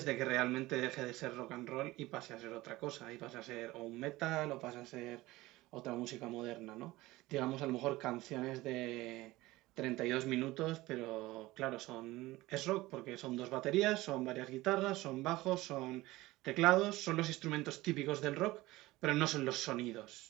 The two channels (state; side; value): quieter; left; 18.8 dB